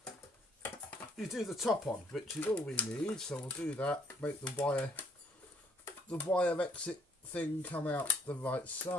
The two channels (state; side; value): normal; both; correlation 0.64